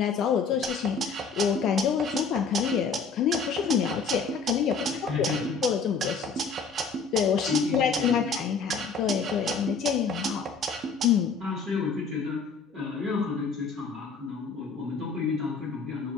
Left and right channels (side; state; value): right; quieter; 5.1 dB